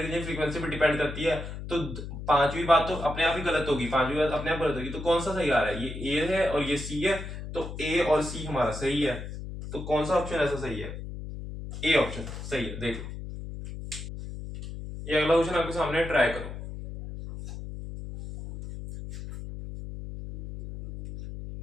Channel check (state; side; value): noise; left; hum, 9 dB below the sound